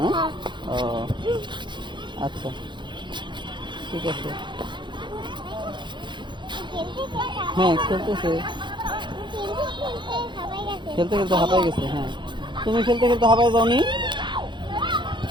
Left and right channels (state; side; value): late; left; 0.23 ms